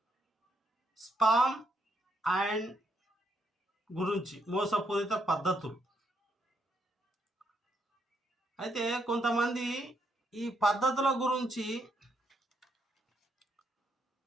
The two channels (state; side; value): normal; both; correlation 0.77